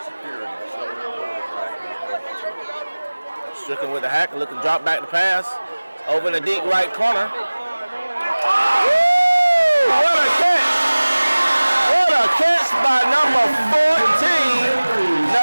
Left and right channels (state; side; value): inverted; both; correlation -1.00